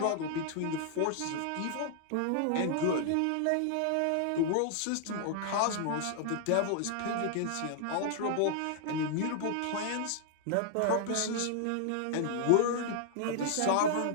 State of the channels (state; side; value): different; both; correlation -0.01